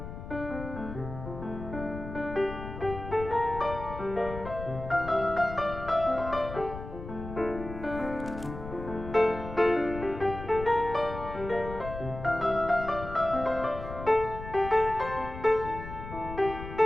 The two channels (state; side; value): noise; left; rumble, 10 dB below the sound